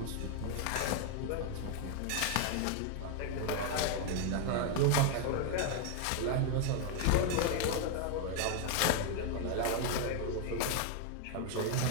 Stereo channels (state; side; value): different; both; correlation 0.00